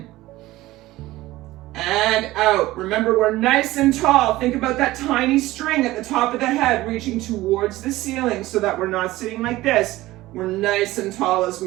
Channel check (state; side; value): quieter; left; 17.5 dB